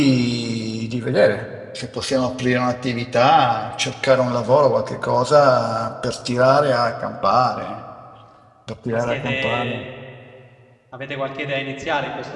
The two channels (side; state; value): both; identical; correlation 1.00